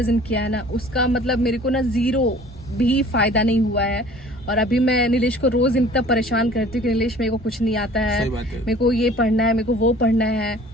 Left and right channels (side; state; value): both; normal; correlation 0.49